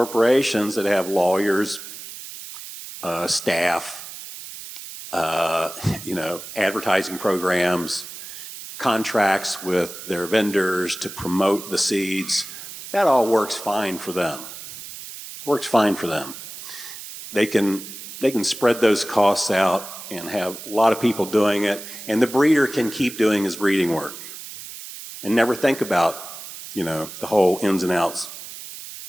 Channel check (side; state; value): right; noise; hiss, 12 dB below the sound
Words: that have lawyers, staff, advertising programs, contracts with their vendors to promote the seeds, that all works fine for them. Works fine for them. They can spread those costs out and have a lot of people doing it, and the breeder can keep doing his breeding work and never think about, the whole ins and outs